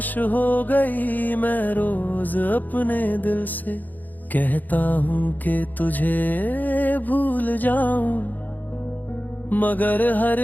हो गई। मैं रोज अपने दिल से कहता हूँ कि तुझे भूल जाऊं, मगर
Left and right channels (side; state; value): right; late; 0.084 ms